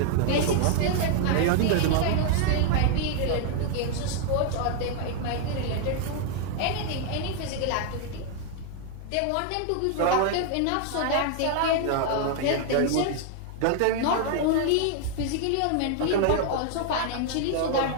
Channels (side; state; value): both; different; correlation 0.00